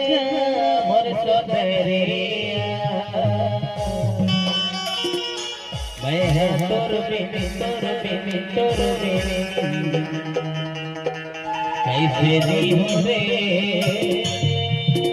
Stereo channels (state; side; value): identical; both; correlation 1.00